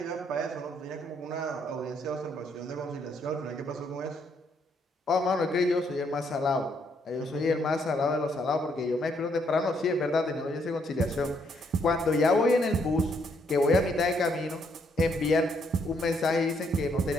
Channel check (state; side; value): normal; both; correlation 0.72